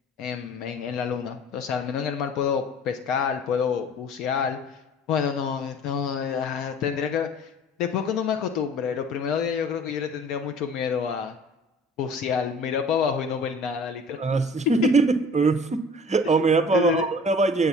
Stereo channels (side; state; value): both; normal; correlation 0.46